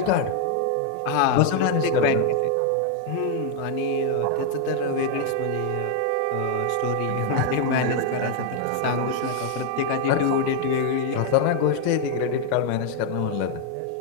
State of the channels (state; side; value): different; both; correlation 0.00